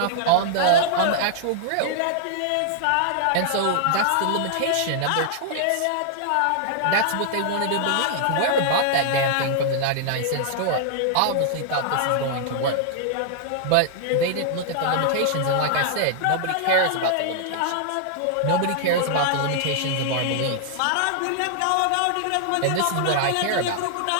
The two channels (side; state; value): both; different; correlation -0.01